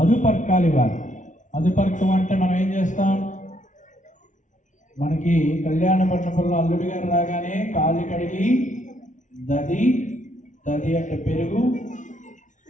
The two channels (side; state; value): right; late; 0.37 ms